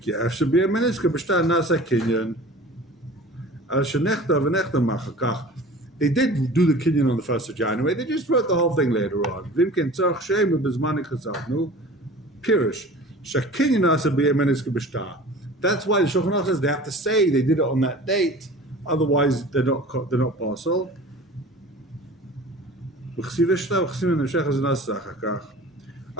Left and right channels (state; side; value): normal; both; correlation 0.41